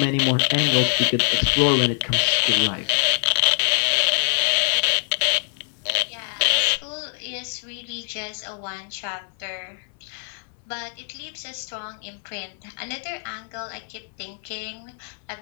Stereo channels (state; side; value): silent; right; 57 dB below the other